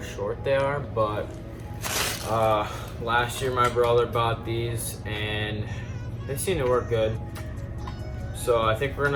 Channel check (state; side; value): identical; both; correlation 1.00